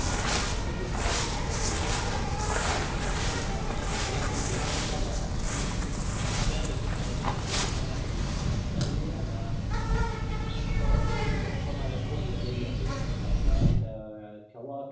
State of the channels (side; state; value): both; identical; correlation 1.00